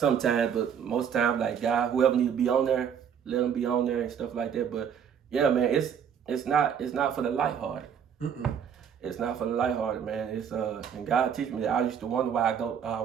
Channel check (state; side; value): quieter; left; 7.9 dB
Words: but most times, like, God, whoever need to be on there, let them be on there and stuff like that. But yeah, man, it's not for the lighthearted. It's not for the lighthearted, man. It's and God teach me that. I used to wonder why I